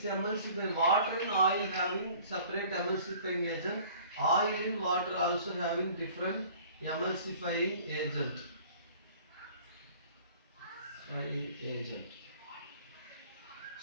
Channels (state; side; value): inverted; both; correlation -0.50